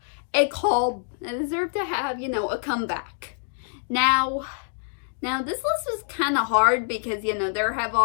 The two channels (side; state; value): right; silent; digital silence